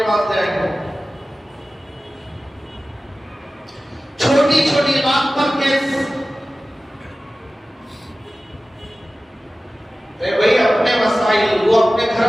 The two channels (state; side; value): normal; both; correlation 0.96